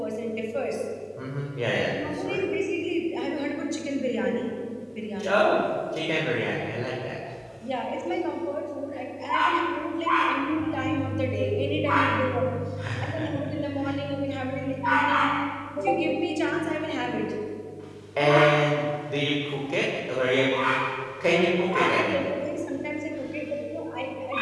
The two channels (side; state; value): both; identical; correlation 1.00